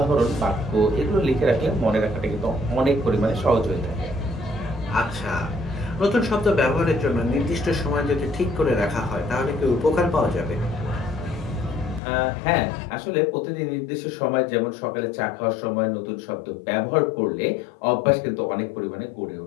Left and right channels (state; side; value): drops out; right; at 12.0 s